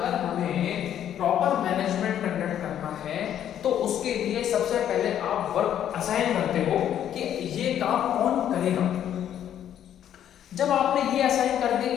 हमें प्रॉपर मैनेजमेंट कंडक्ट करना है तो उसके लिए सबसे पहले आप वर्क असाइन करते हो कि ये काम कौन करेगा। जब आपने ये असाइन कर दिया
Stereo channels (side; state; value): right; quieter; 10.3 dB